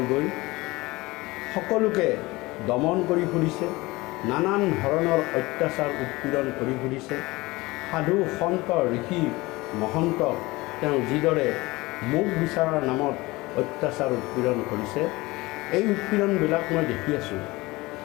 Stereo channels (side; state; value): right; quieter; 21.5 dB